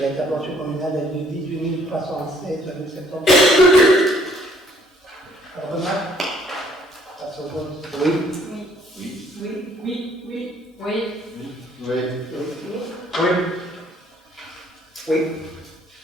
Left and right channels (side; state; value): both; normal; correlation 0.62